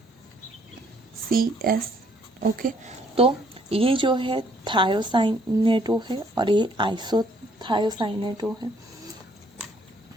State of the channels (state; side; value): normal; both; correlation 0.65